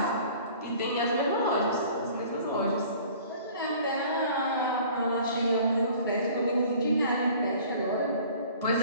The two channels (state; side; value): inverted; both; correlation -0.49